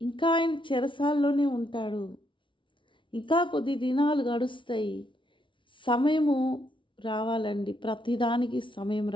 ఆయన చెరసాల్లోనే ఉంటాడు. ఇంకా కొద్ది దినాలు గడుస్తాయి. సమయము రావాలండి, ప్రతిదానికి సమయం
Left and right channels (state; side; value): late; right; 0.24 ms